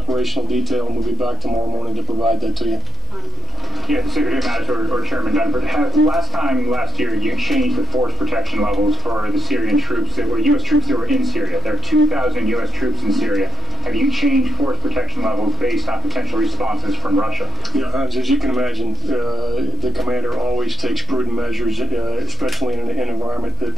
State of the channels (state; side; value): normal; both; correlation 0.65